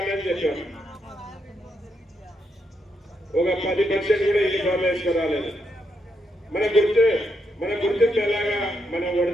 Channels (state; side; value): normal; both; correlation 0.80